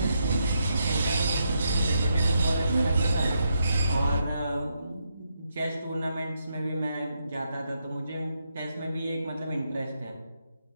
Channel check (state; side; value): inverted; both; correlation -0.81